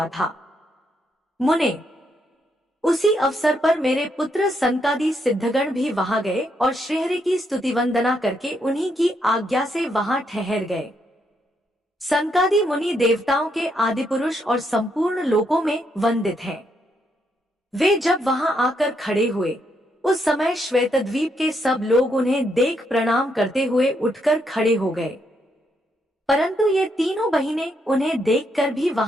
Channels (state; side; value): normal; both; correlation 0.77